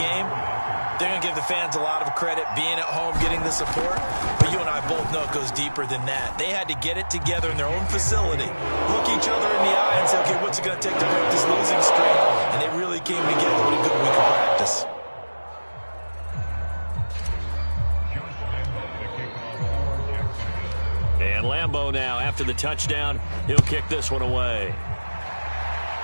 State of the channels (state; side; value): inverted; both; correlation -1.00